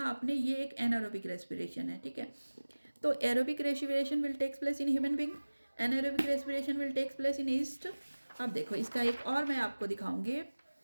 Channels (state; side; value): inverted; both; correlation -1.00